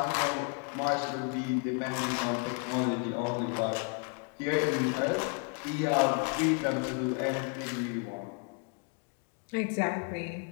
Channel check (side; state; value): right; quieter; 37.4 dB